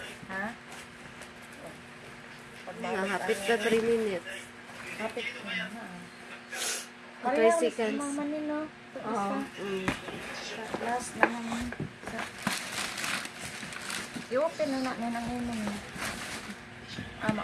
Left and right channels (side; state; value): both; identical; correlation 1.00